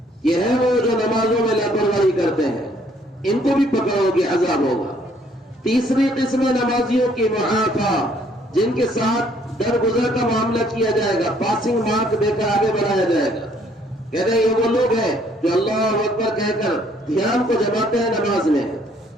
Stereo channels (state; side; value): normal; both; correlation 0.64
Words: یہ ہے وہ جو نمازوں میں لاپرواہی کرتے ہیں، ان کو بھی پکڑ ہوگی، عذاب ہوگا۔ تیسری قسم نمازیوں کی معافا، جن کے ساتھ درگزر کا معاملہ کیا جائے گا، پاسنگ مارک دے کر آگے بڑھایا جائے گا. کہتے ہیں یہ وہ لوگ ہیں جو اللہ اکبر کہہ کر دھیان کو جماتے ہیں نماز میں،